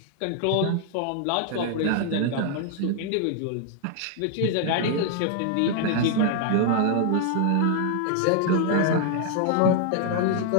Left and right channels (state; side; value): different; both; correlation 0.00